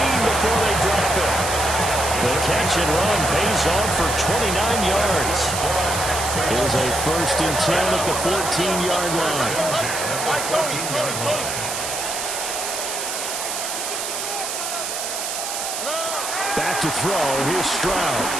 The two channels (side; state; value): right; noise; hiss, 4 dB below the sound